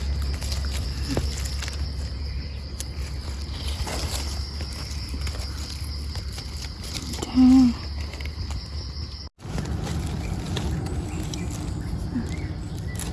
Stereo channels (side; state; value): both; identical; correlation 1.00